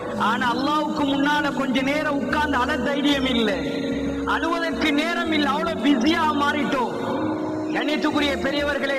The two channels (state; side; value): identical; both; correlation 1.00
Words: ஆனா அல்லாவுக்கு முன்னால கொஞ்ச நேரம் உட்கார்ந்து அழ தைரியம் இல்லை, அழுவதற்கு நேரம் இல்லை, அவ்வளவு பிஸியா மாறிட்டோம். கண்ணியத்துக்குரிய பெரியவர்களே,